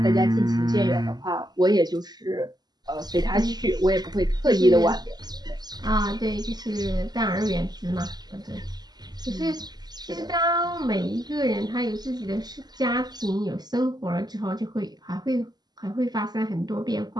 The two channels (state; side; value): late; left; 0.20 ms